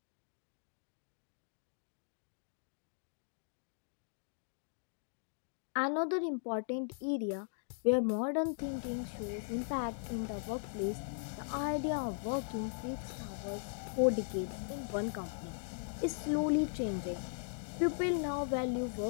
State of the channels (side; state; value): right; silent; digital silence